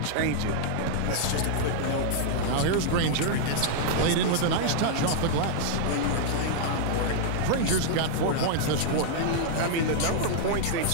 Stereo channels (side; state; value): both; different; correlation -0.01